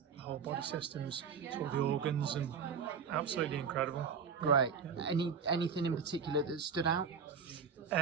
body systems to all the organs, and absolutely incredible. Great. Yeah. Anything in particular that stood out?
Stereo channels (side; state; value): left; quieter; 6.2 dB